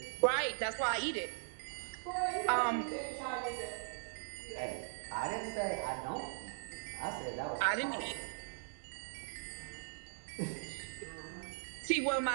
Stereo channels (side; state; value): left; silent; digital silence